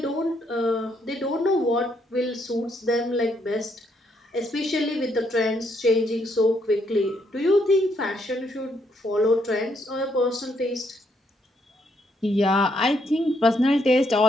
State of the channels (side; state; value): both; normal; correlation 0.74